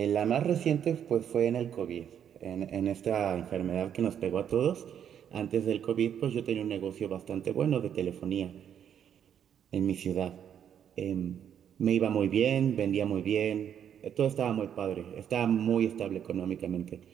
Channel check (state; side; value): quieter; left; 9.0 dB